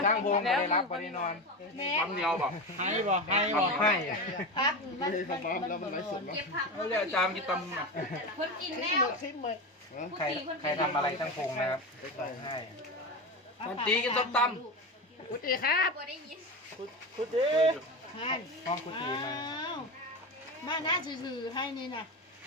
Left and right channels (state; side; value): normal; both; correlation 0.21